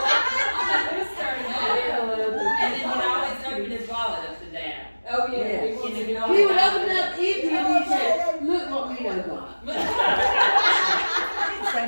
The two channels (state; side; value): inverted; both; correlation -1.00